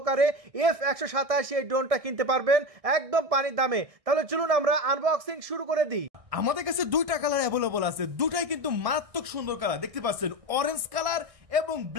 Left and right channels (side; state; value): left; late; 1.6 ms